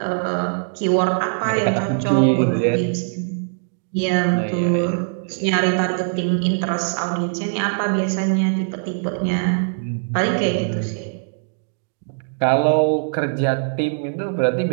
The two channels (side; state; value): left; silent; digital silence